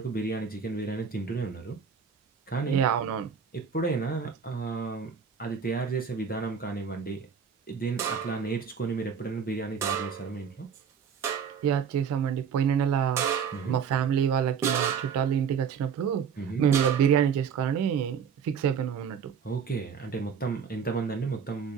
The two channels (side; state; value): left; quieter; 6.9 dB